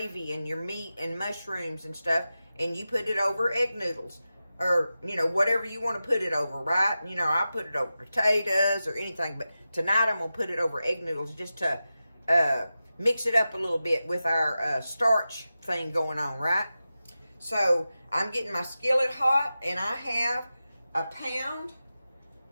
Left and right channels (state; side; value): inverted; both; correlation -0.93